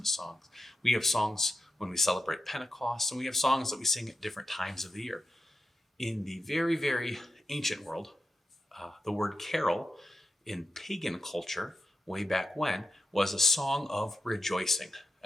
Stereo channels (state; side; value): normal; both; correlation 0.87